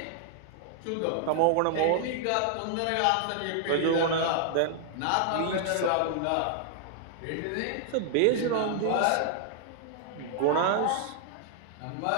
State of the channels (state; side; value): different; both; correlation -0.01